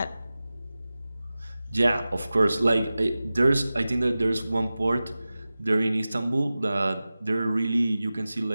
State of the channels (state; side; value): inverted; both; correlation -0.96